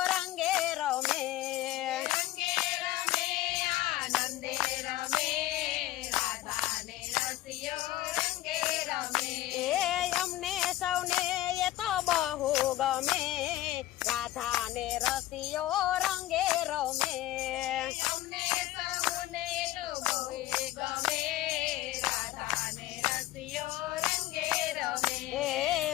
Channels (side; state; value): right; quieter; 15.3 dB